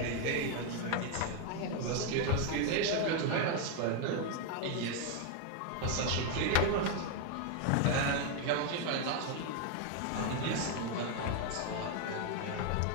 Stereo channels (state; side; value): different; both; correlation 0.01